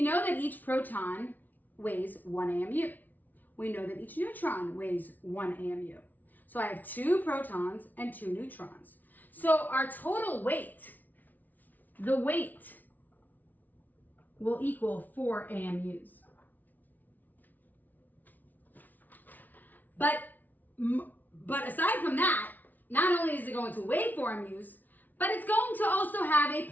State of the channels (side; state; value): right; late; 0.081 ms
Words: know that each proton weighs 1 AMU. We know that each neutron weighs 1 AMU. So I have 2 protons and 2 neutrons. So our total weight, the weight, will equal 4 AMUs. But aside from that, not only is it going to weigh 4 AMUs, but it's going to also have a